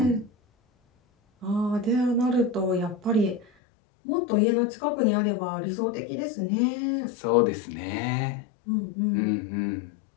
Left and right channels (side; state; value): right; drops out; at 3.5 s